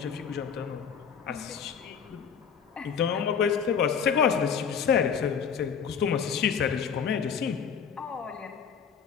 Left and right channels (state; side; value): quieter; right; 7.0 dB